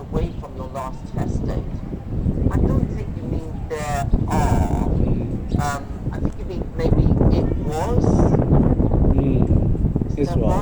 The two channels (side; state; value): both; identical; correlation 1.00